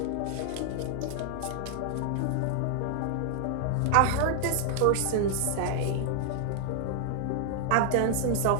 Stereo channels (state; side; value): different; both; correlation 0.00